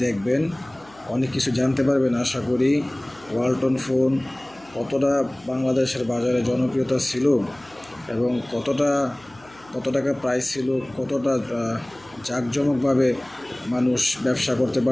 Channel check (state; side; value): noise; left; hum, 26 dB below the sound